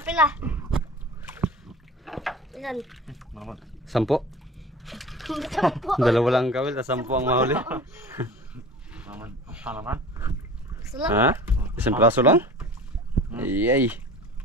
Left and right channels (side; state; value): both; normal; correlation 0.39